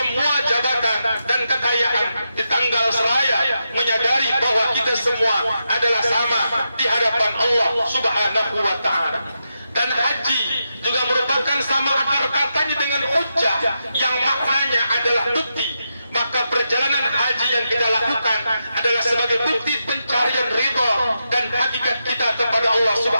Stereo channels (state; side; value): inverted; both; correlation -0.86